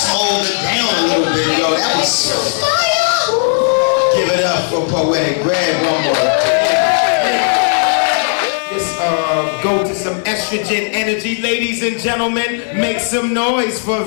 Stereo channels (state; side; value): silent; right; 63 dB below the other